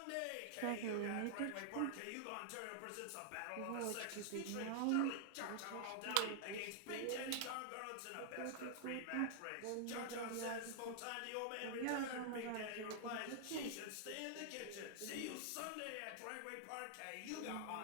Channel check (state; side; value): different; both; correlation -0.01